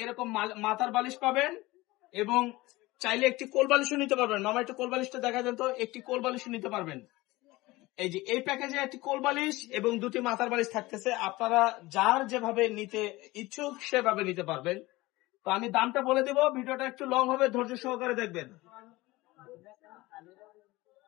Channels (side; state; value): right; quieter; 20.2 dB